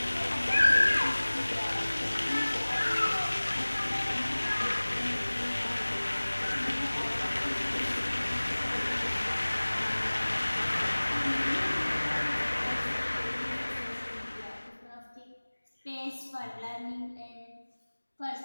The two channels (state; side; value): inverted; both; correlation -1.00